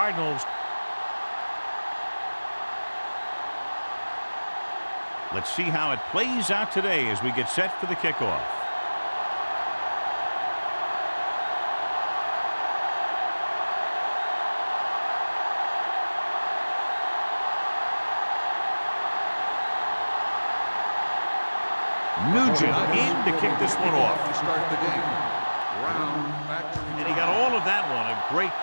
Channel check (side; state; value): both; inverted; correlation -1.00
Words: Let's see how it plays out today as we get set for the kickoff. Nugent in to kick this one off. To start the game. And he got all of that one. A great